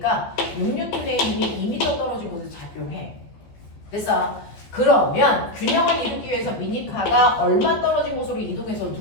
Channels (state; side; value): late; right; 14 ms